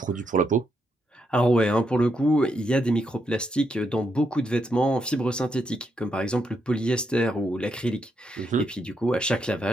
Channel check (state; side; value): normal; both; correlation 0.80